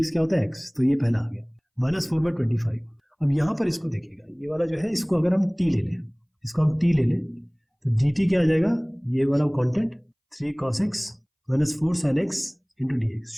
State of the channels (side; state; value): both; identical; correlation 1.00